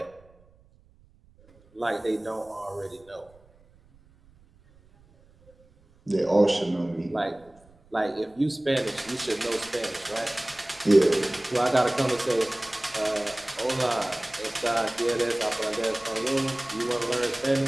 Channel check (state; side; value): noise; right; rumble, 29 dB below the sound